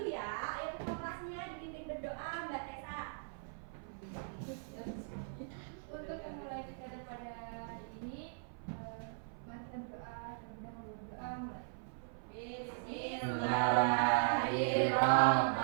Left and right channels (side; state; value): left; silent; 52 dB below the other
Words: ya. Ayo ketua kelasnya dipimpin berdoa, Mbak Tessa. Untuk memulai kegiatan pada hari ini, mari kita berdoa terlebih dahulu. Berdoa mulai.